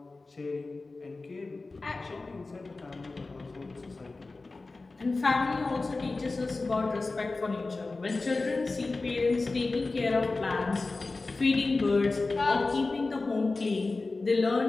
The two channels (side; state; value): right; quieter; 3.5 dB